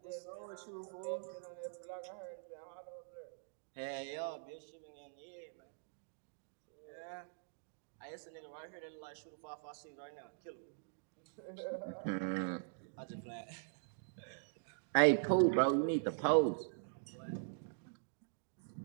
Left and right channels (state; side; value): silent; left; digital silence